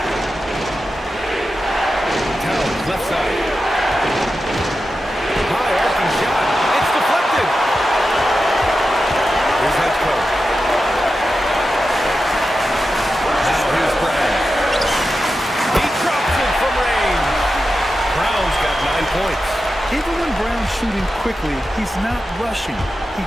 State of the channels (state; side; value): normal; both; correlation 0.91